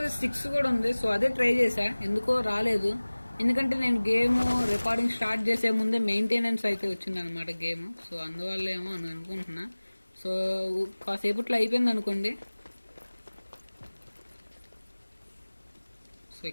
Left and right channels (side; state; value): both; inverted; correlation -1.00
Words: కూడా ఉంది. సో అదే ట్రై చేశా, ఎందుకో రాలేదు. ఎందుకంటే నేను గేమ్ రికార్డింగ్ స్టార్ట్ చేసే ముందే మెయింటెనెన్స్ అయితే వచ్చింది అనమాట గేమ్. సో అందువల్ల ఏమో అని అనుకుంటున్నా. సో కాసేపట్లో అయిపోయింది అనుకోండి. సో